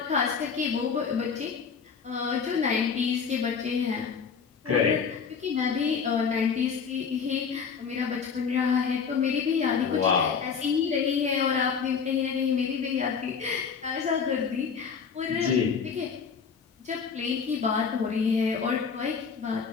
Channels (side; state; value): right; quieter; 6.2 dB